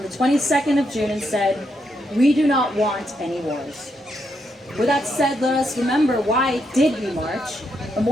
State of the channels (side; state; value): both; normal; correlation 0.79